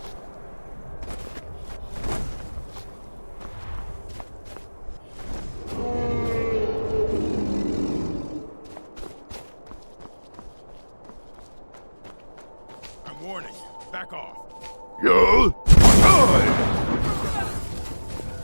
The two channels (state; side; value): inverted; both; correlation -1.00